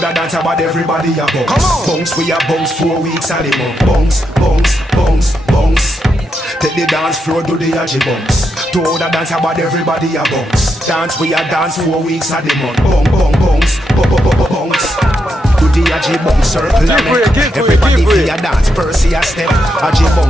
dance about everybody a bounce. Come on. Bounce, we a bounce 4 weeks and the month. Bounce, bounce, bounce, bounce. Take the dance floor, do the Aji bounce. To the dance about everybody a bounce. Dance, we a dance 4 weeks and the month. Bounce, bounce. Do the Aji bounce circle a make. Everybody feel a dance, Percy a step. Aji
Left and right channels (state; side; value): normal; both; correlation 0.82